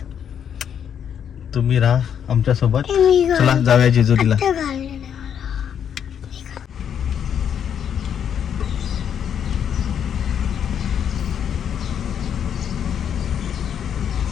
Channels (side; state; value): right; quieter; 8.5 dB